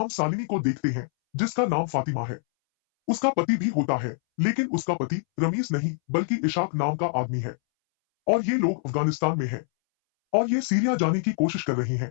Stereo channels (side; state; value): right; silent; 61 dB below the other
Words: शालिनी को देखते हैं जिसका नाम फातिमा है। उसका पति भी होता है, लेकिन उसका पति रमीज नहीं बल्कि इशाक नाम का आदमी है और ये लोग अफगानिस्तान में हैं और ये सीरिया जाने की कोशिश कर रहे